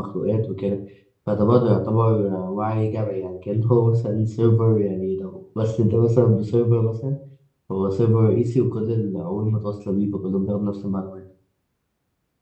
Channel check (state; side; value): identical; both; correlation 1.00